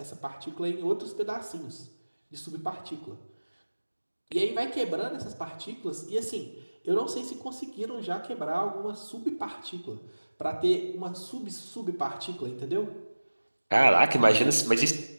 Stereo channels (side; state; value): both; inverted; correlation -1.00